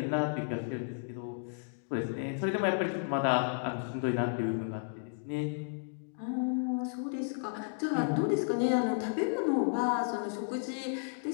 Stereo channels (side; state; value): right; silent; digital silence